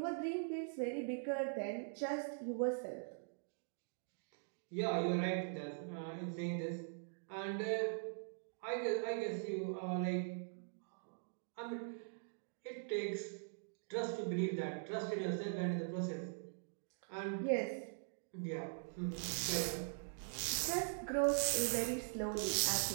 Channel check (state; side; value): silent; left; digital silence